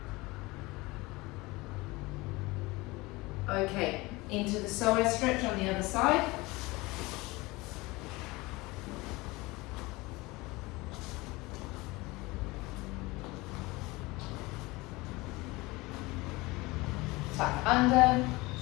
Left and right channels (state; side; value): quieter; right; 22.4 dB